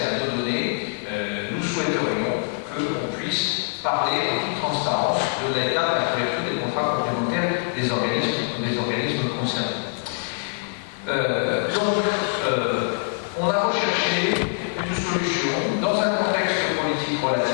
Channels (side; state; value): right; silent; 63 dB below the other